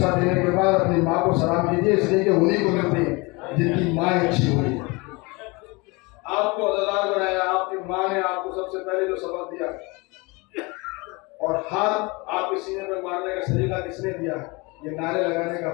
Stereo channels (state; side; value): quieter; right; 26.5 dB